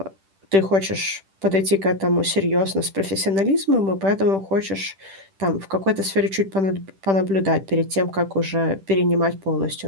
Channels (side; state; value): left; late; 10 ms